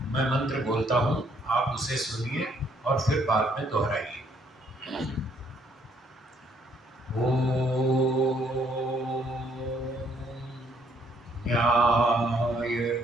मैं मंत्र बोलता हूँ, आप उसे सुनिए और फिर बाद में दोहराइए। ओम न्यायकारी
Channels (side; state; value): both; normal; correlation 0.67